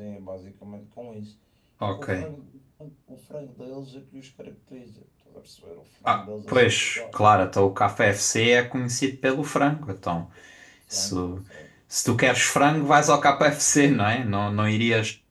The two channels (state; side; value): identical; both; correlation 1.00